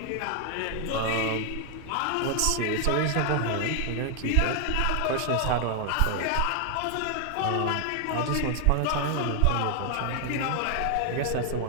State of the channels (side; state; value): both; different; correlation 0.00